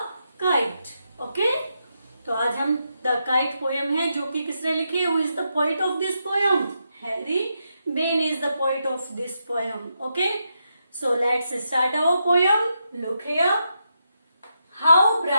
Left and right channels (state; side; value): inverted; both; correlation -0.83